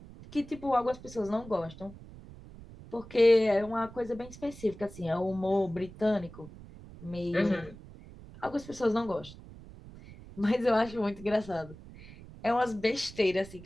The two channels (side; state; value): right; noise; rumble, 17 dB below the sound